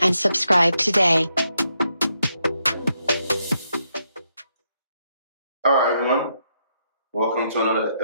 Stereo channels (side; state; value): both; inverted; correlation -0.79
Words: subscribe today. All right, everyone. Welcome to another